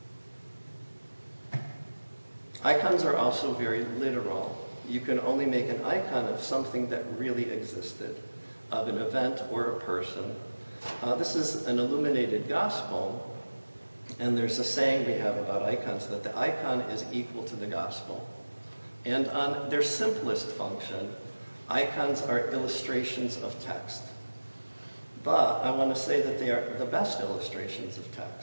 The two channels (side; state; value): both; inverted; correlation -1.00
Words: Icons are also very literal. You can only make an icon of something that really existed, of an event or a person. This is an illuminated gospel, and there's a saying we have about icons that the icon is equal to the gospel. And on their simplest function, icons are illustrations of text. But I want to say that they are the best illustrations of